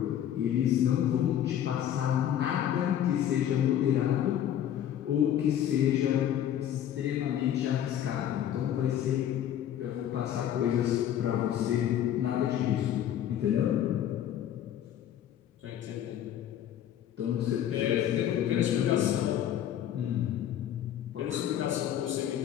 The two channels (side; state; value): right; quieter; 10.7 dB